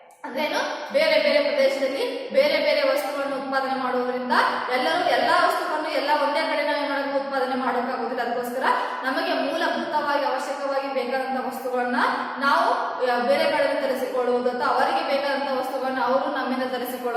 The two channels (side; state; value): both; identical; correlation 1.00